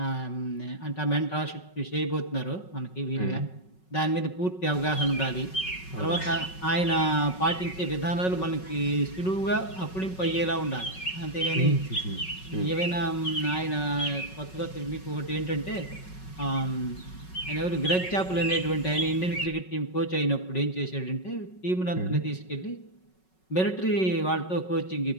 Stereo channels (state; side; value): late; right; 5.4 ms